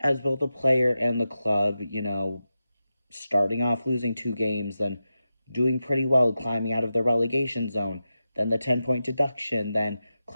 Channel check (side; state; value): both; inverted; correlation -0.91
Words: both a player and the club, starting off losing 2 games, then doing pretty well, climbing out of the relegation zone, then the 10-point deduction, then